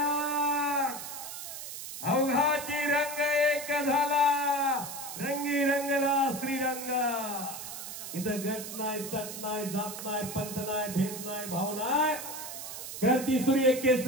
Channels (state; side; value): noise; right; hiss, 9 dB below the sound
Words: अवघाची रंग एक झाला. रंगी रंगला श्रीरंग. इथं गट नाही, तट नाही, जात नाही, पंत नाही, भेद नाही, भाव नाही. क्रांती सूर्य